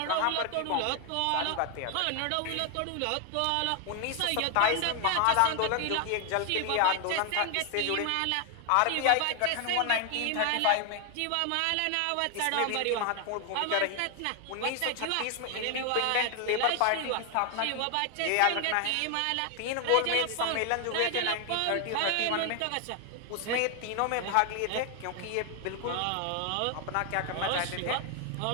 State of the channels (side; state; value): both; different; correlation 0.00